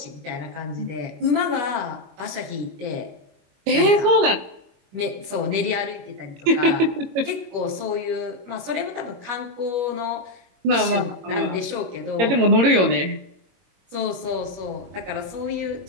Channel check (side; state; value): left; late; 22 ms